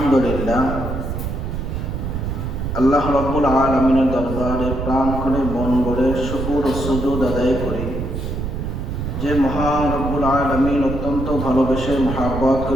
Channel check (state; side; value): noise; right; rumble, 4 dB below the sound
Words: আল্লাহ রাব্বুল আলামিনের দরবারে প্রাণ করে মন ভরে শুকর ও সুজুদ আদায় করি যে মহান রব্বুল আলামিন অত্যন্ত ভালোবেসে মহাব্বত